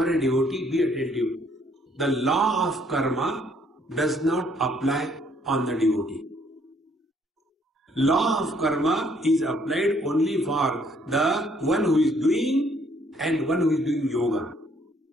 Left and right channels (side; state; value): both; normal; correlation 0.66